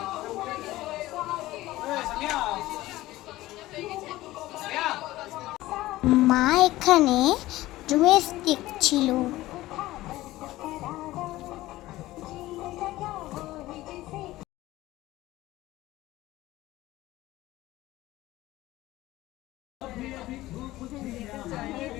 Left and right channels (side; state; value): right; quieter; 17.0 dB